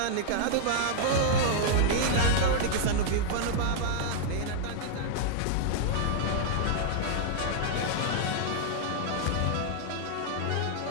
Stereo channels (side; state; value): both; different; correlation -0.01